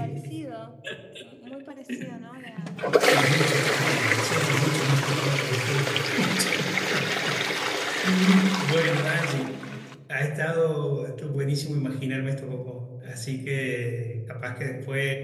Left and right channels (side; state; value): both; identical; correlation 1.00